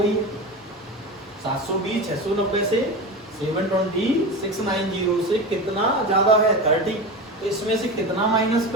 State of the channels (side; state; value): both; normal; correlation 0.25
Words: 720 690 से 720 690 से कितना ज्यादा है, 30। तो इसमें से कितना माइनस